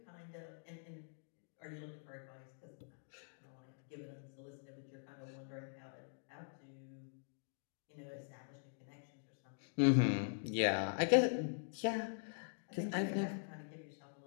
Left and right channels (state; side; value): silent; right; digital silence